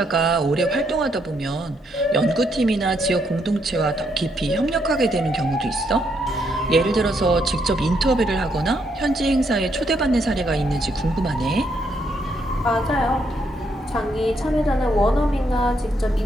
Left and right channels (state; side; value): normal; both; correlation 0.75